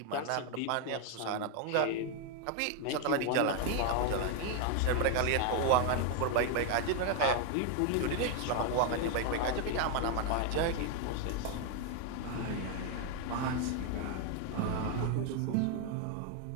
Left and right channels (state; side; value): different; both; correlation 0.01